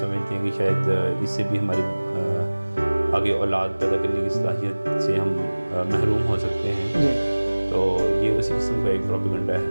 हैं कि शायद इससे भी हमारी आगे औलाद पैदा करने की सलाहियत से हम महरूम हो सकते हैं जी। तो ये उसी किस्म का एक प्रोपेगेंडा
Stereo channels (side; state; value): both; inverted; correlation -1.00